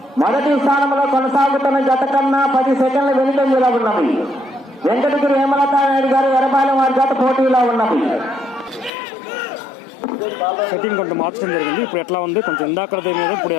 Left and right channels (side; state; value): right; drops out; at 8.9 s